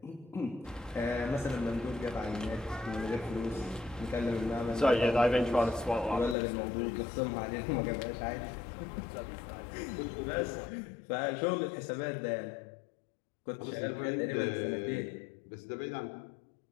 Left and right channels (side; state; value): right; drops out; at 6.4 s